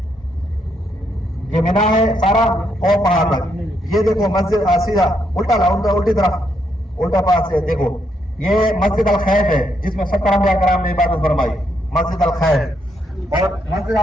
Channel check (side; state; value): both; normal; correlation 0.76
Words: ये मीना है सारा और पहाड़ तक। ये देखो मस्जिद सीधा उल्टा उल्टी तरफ उल्टा पास से देखो, ये मस्जिद अल खैफ है जिसमें 70 अंबिया कराम ने इबादत फरमाई, मस्जिद अल खैफ। और मस्जिद